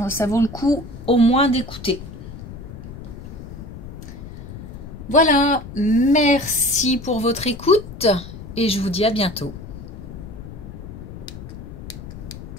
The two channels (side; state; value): left; noise; rumble, 12 dB below the sound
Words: Ça vaut le coup au moins d'écouter. Voilà, merci pour votre écoute et je vous dis à bientôt.